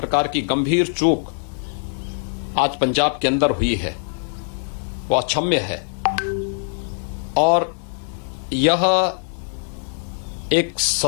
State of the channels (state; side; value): silent; right; digital silence